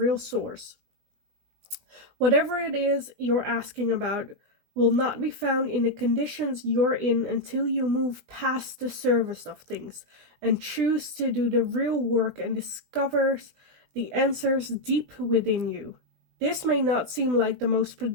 source. Whatever it is you're asking about will not be found in the conditions you're in until you move past the surface of things and choose to do the real work and discover the answers deep within you. This may not seem like the most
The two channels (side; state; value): left; late; 20 ms